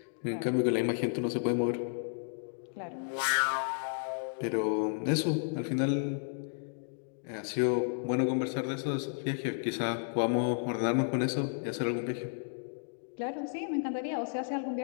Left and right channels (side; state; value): right; silent; digital silence